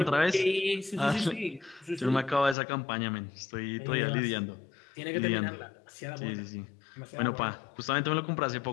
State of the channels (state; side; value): drops out; right; at 2.6 s